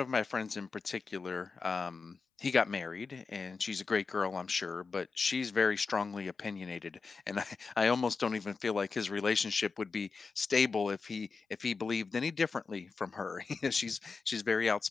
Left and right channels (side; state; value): right; quieter; 4.6 dB